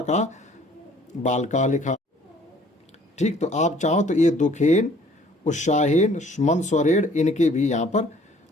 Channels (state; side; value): normal; both; correlation 0.56